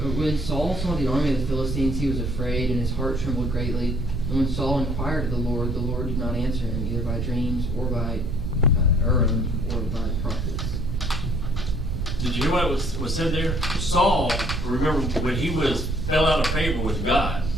When Saul saw the army of the Philistines, he was afraid, and his heart trembled greatly. And when Saul inquired of the Lord did not answer him, either by dreams, or by Urim, or by the prophets. Did you hear what was said there? Saul, remember, when he fell out of favor with God,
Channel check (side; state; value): right; noise; rumble, 2 dB below the sound